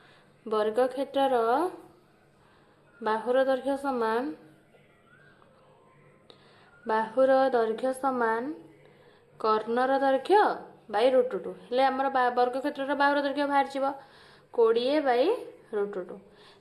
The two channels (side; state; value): both; identical; correlation 1.00